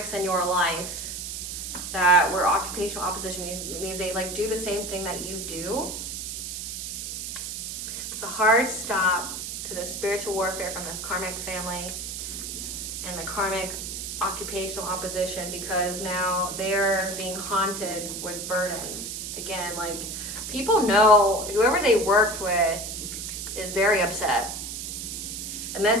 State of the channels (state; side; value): noise; right; hiss, 6 dB below the sound